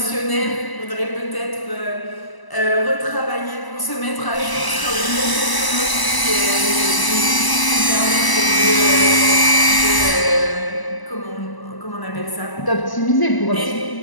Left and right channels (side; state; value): right; late; 1.0 ms